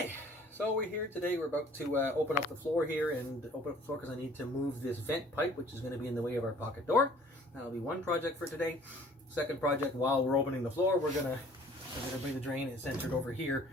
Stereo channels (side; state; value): both; normal; correlation 0.53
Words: so we're here today. We're about to open up the floor here and open up the floor because I need to move this vent pipe, which is going to be in the way of our pocket door. That'll be one project for today. Second project, while we're opening the floor, we're gonna bring the drain and centered over here